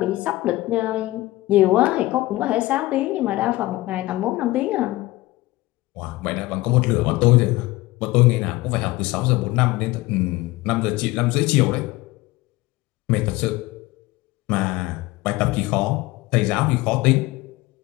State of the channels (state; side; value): quieter; right; 19.0 dB